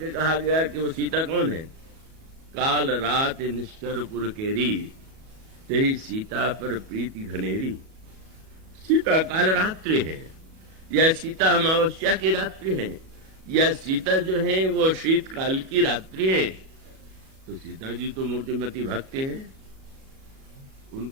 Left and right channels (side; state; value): left; late; 37 ms